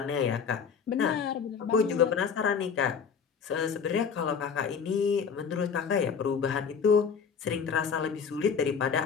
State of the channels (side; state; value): right; quieter; 6.4 dB